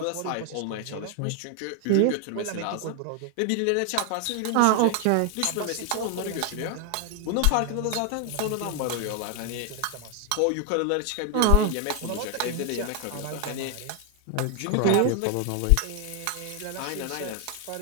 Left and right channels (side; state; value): both; different; correlation 0.00